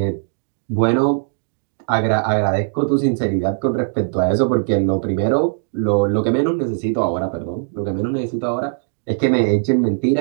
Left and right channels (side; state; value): left; silent; digital silence